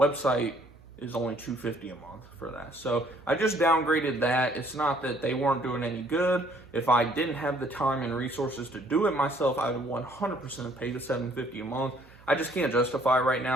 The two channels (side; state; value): right; noise; hum, 24 dB below the sound